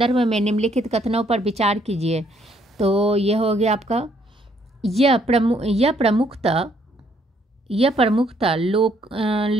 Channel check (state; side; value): normal; both; correlation 0.68